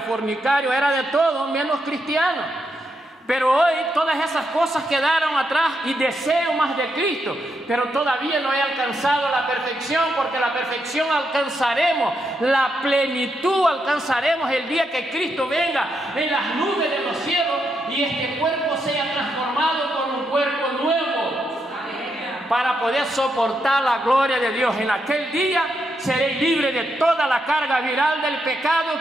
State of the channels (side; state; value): both; normal; correlation 0.81